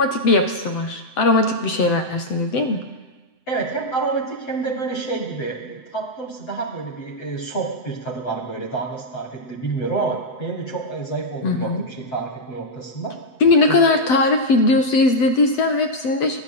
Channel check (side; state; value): right; late; 7.9 ms